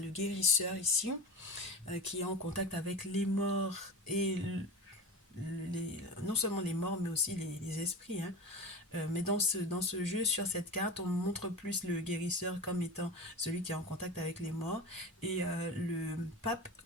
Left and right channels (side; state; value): both; normal; correlation 0.28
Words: guérisseur ici, qui est en contact avec les morts et non seulement les morts, mais aussi les esprits, hein. Mais dans ce jeu, sur cette carte, on montre plus le guérisseur comme étant celui qui est en contact avec les morts et le pape